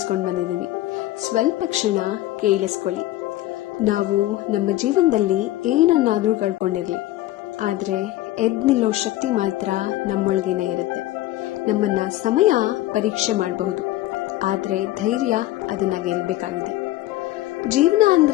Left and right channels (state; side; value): quieter; right; 15.8 dB